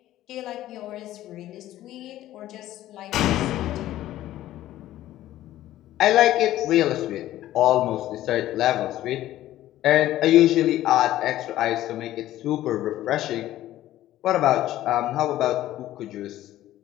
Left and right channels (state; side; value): quieter; right; 14.1 dB